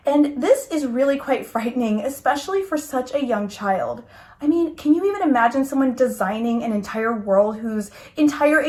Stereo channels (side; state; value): both; identical; correlation 1.00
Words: And this is really quite frightening, especially for such a young child. I mean, can you even imagine someone designing an entire world whose entire